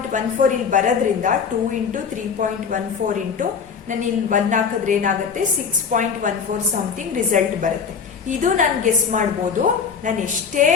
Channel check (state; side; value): quieter; right; 6.2 dB